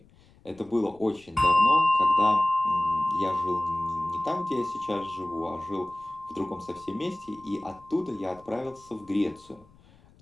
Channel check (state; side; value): noise; left; rumble, 28 dB below the sound